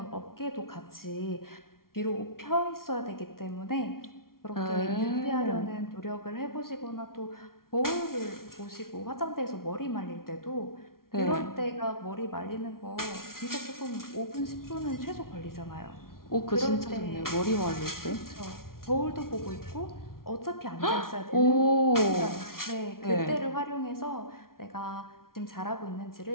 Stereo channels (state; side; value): late; right; 0.93 ms